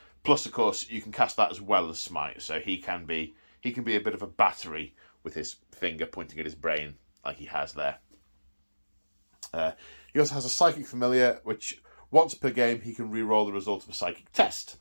Plus, of course, you can cast that as well as Smite, so he can be a bit of a battery with his finger pointing at his brain, like he has there. He also has a Psychic Familiar, which once per game he can reroll the result of a psychic test.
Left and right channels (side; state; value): both; inverted; correlation -1.00